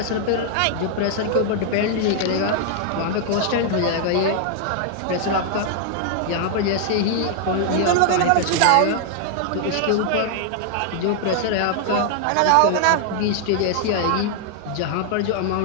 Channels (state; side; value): different; both; correlation 0.00